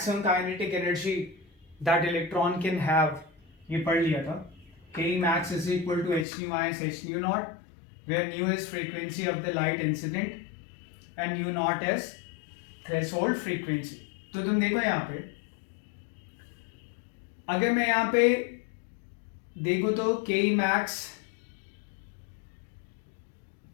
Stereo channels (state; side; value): drops out; right; at 6.2 s